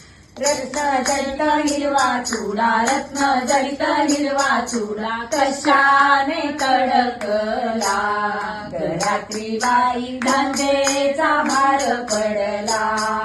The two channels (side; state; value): both; identical; correlation 1.00